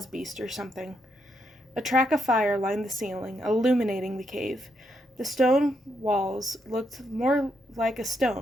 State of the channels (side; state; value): both; normal; correlation 0.79